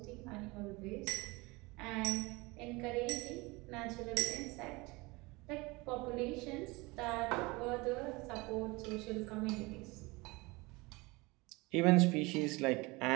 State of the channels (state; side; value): quieter; left; 24.1 dB